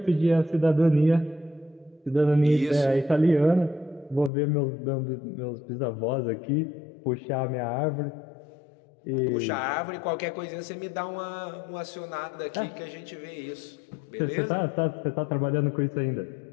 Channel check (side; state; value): right; drops out; at 4.3 s